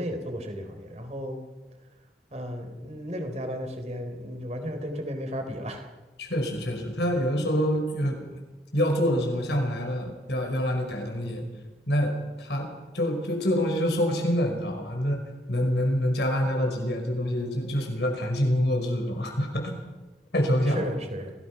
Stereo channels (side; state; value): both; normal; correlation 0.68